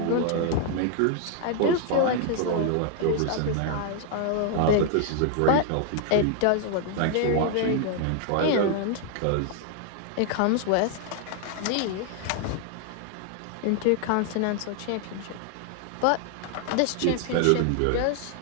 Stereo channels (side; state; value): both; different; correlation 0.00